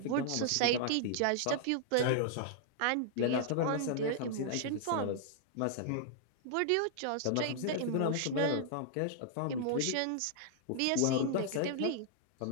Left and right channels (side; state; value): both; different; correlation -0.01